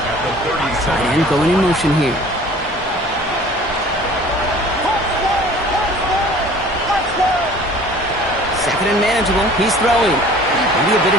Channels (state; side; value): normal; both; correlation 0.48